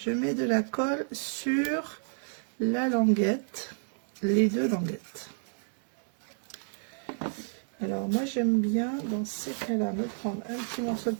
mets de la colle sur la languette, les deux languettes. Alors moi j'aime bien dans ces cas-là me prendre un petit morceau de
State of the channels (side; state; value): left; silent; 58 dB below the other